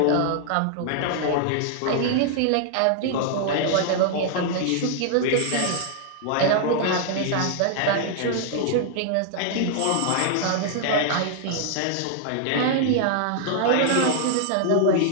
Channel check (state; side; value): different; both; correlation -0.01